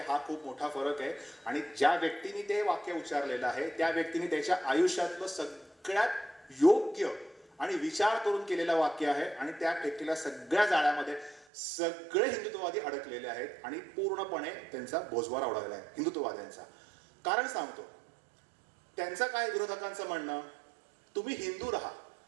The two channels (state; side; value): drops out; left; at 11.5 s